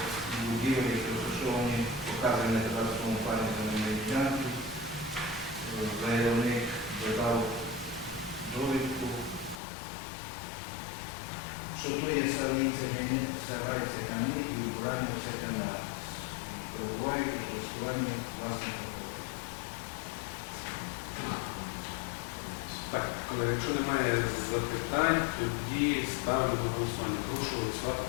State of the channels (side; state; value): right; drops out; at 9.6 s